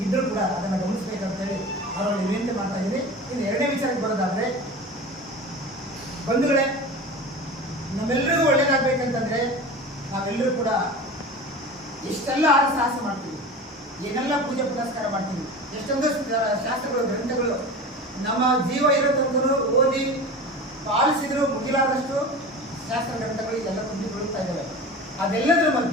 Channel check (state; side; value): normal; both; correlation 0.33